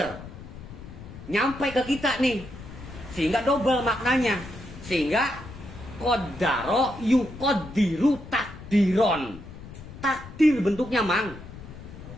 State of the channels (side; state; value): left; noise; rumble, 14 dB below the sound